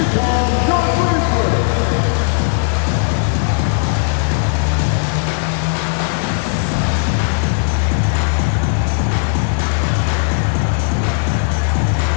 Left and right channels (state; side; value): silent; right; 58 dB below the other